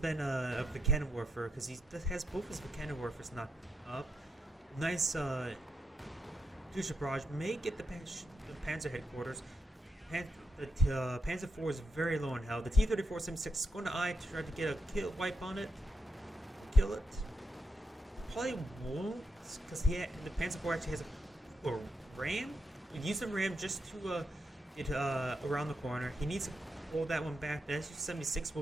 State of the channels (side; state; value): both; normal; correlation 0.83